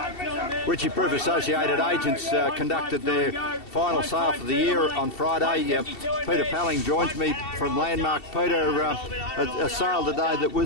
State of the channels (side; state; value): right; late; 2.7 ms